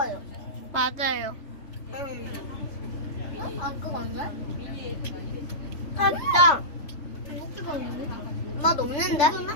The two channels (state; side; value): late; right; 3.3 ms